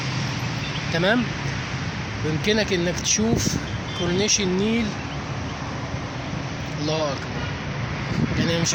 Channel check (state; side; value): identical; both; correlation 1.00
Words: تمام. ويمكنك انك تشوف كورنيش النيل. الله اكبر. يعني مش